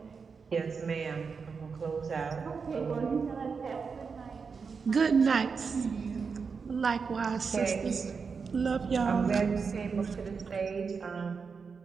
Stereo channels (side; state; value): left; quieter; 5.4 dB